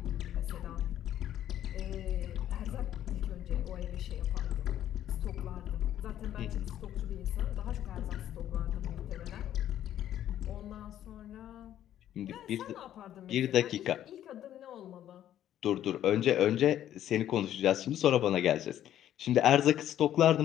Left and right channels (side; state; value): right; quieter; 11.5 dB